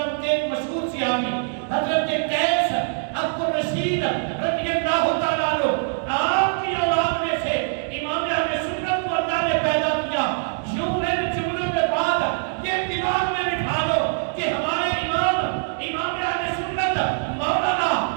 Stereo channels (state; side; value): silent; left; digital silence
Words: کے مشہور صحابی حضرت قیس عبد الرشید رضی اللہ تعالیٰ عنہ، آپ کی اولاد میں سے امام اہل سنت کو اللہ نے پیدا کیا۔